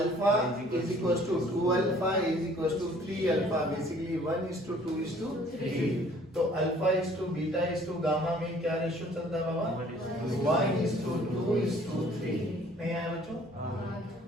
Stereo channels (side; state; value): both; normal; correlation 0.56